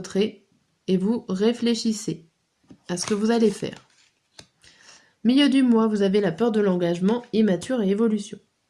et vous réfléchissez à ce que vous allez faire. Milieu du mois, vous avez la peur de l'engagement, immature et évolution.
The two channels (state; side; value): identical; both; correlation 1.00